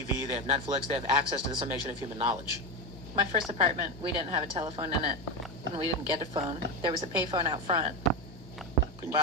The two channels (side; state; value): both; normal; correlation 0.14